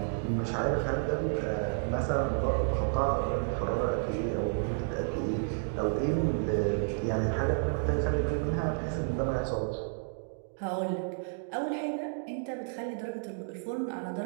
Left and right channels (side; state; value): left; silent; digital silence